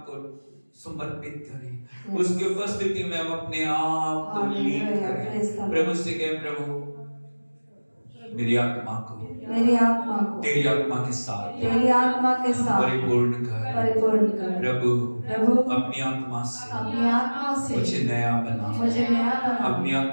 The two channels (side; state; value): both; inverted; correlation -1.00